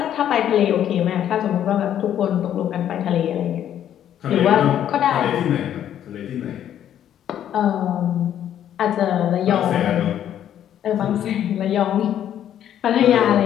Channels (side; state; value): right; quieter; 10.5 dB